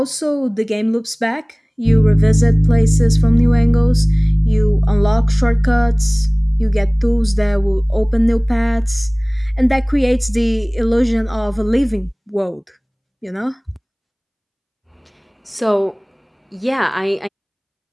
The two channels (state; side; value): identical; both; correlation 1.00